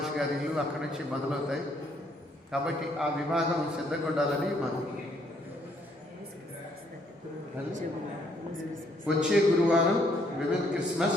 గారి ఇల్లు అక్కడి నుంచి మొదలవుతాయి. కాబట్టి ఆ విభాగం సిద్ధంగా ఉండాలని మనం. వచ్చే గురువారం విమెన్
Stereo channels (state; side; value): normal; both; correlation 0.69